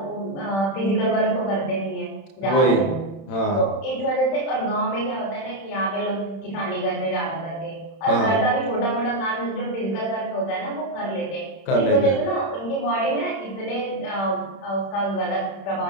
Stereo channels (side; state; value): right; late; 31 ms